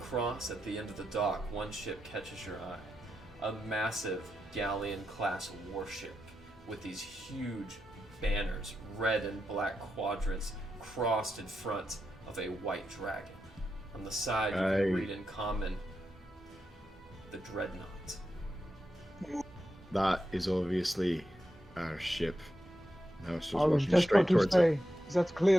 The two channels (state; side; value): normal; both; correlation 0.87